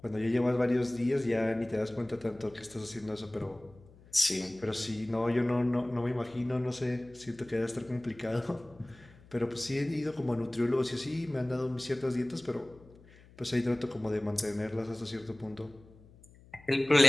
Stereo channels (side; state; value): left; noise; hum, 24 dB below the sound